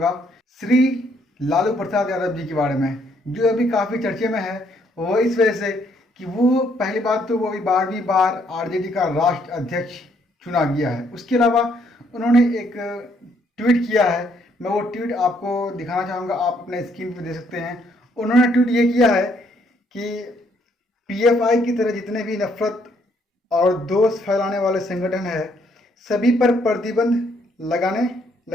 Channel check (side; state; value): both; normal; correlation 0.69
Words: श्री लालू प्रसाद यादव जी के बारे में, जो अभी काफ़ी चर्चे में है। वो इस वजह से कि वो पहली बात तो वो अभी 12वीं बार आरजेडी का राष्ट्र अध्यक्ष चुना गया है। उसके अलावा उन्होंने एक ट्वीट किया है। मैं वो ट्वीट आपको दिखाना चाहूँगा, आप अपने स्क्रीन पे दे सकते हैं। उन्होंने ट्वीट ये किया है कि पीएफआई की तरह जितने भी नफरत और दोष फैलाने वाले संगठन है, सभी पर प्रतिबंध